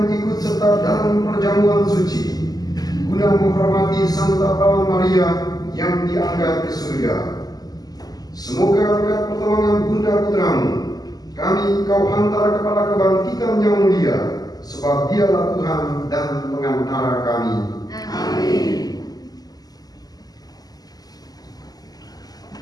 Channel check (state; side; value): late; right; 0.18 ms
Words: ikut serta dalam perjamuan suci guna menghormati Santa Perawan Maria yang diangkat ke surga. Semoga berkat pertolongan Bunda Putramu kami Kau hantar kepada kebangkitan yang mulia, sebab Dialah Tuhan dan pengantara kami. Amin.